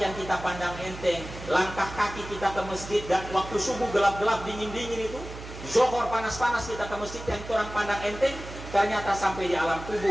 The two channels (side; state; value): right; noise; hum, 12 dB below the sound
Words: kita pandang enteng, langkah kaki kita ke masjid, dan waktu subuh gelap-gelap, dingin-dingin itu, Zohor panas-panas kita ke masjid yang orang pandang enteng, ternyata sampai di alam